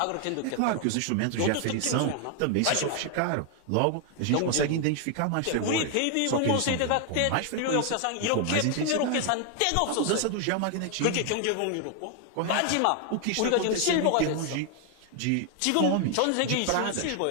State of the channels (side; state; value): both; different; correlation 0.00